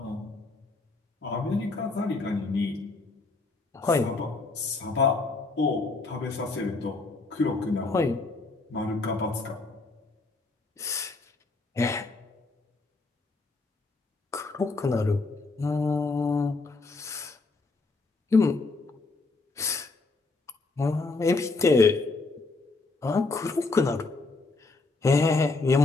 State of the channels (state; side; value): quieter; right; 3.6 dB